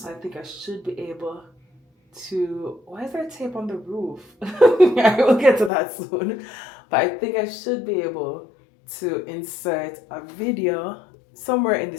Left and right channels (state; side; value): drops out; right; at 5.7 s